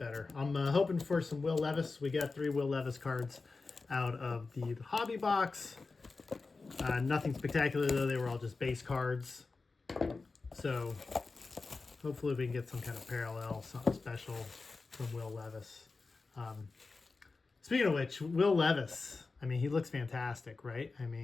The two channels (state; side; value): quieter; right; 4.0 dB